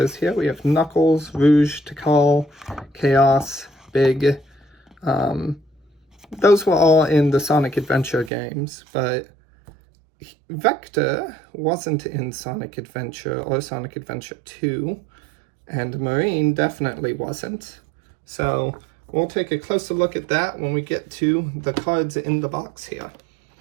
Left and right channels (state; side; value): drops out; left; at 8.3 s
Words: here. We have Knuckles, Rouge, Tikal, Chaos, Big. Those were all in the Sonic Adventure games, but Vector wasn't in Sonic Adventure or Sonic Adventure 2, and Marine definitely wasn't. So we'll take a closer look at that when we get to the cards in the box here.